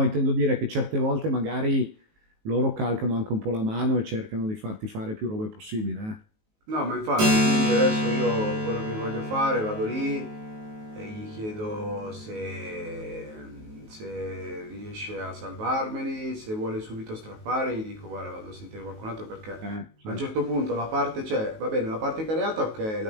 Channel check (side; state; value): left; late; 19 ms